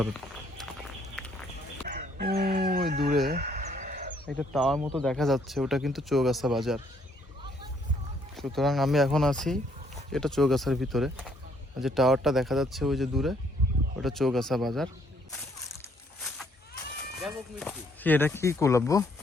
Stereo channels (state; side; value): normal; both; correlation 0.67